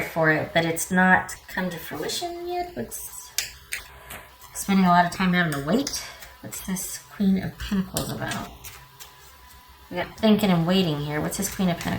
for it, but it's not come to fruition yet. What's spending a lot of time having to wait? What's this Queen of Pentacles about? We got thinking and waiting here. What's this Queen of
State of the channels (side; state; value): both; identical; correlation 1.00